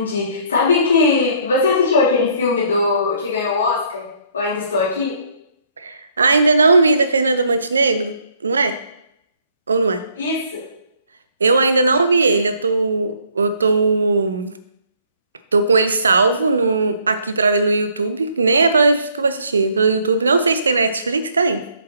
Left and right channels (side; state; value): both; inverted; correlation -0.66